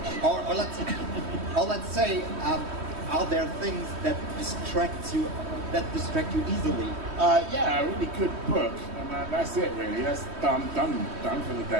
Or let's say, are there things that distract you easily? Yeah, a really good book, and that's it really. That's done for the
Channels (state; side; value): late; left; 3.1 ms